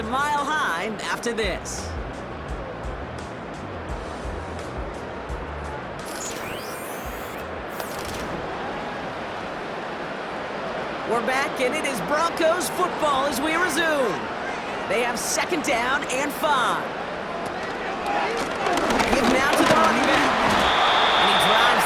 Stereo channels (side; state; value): both; identical; correlation 1.00